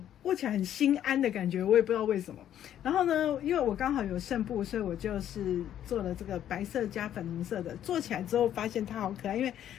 握起来很心安的感觉，我也不知道为什么。然后呢，因为我刚好有剩布，所以我就是做了这个白色加粉红色的。做起来之后发现它好可爱，因为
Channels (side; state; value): right; quieter; 10.8 dB